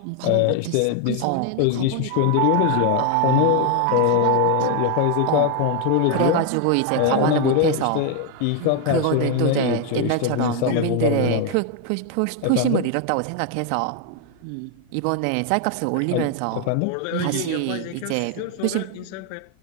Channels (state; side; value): different; both; correlation 0.01